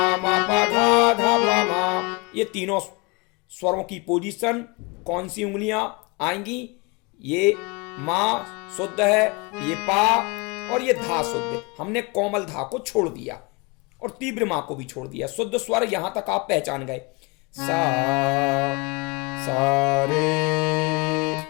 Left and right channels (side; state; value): right; quieter; 28.6 dB